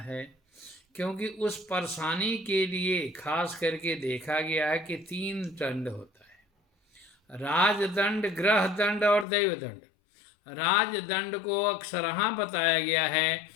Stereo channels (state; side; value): drops out; right; at 9.2 s